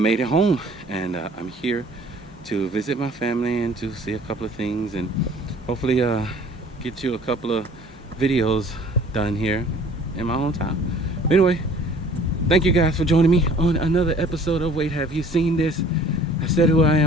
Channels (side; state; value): both; normal; correlation 0.51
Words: it home, and I'm here to visit my family and to see a couple of things, and hopefully get you a couple of videos done here in my hometown. Anyway, thank you guys for joining me on another episode of Wait, Have You Seen This? I said who I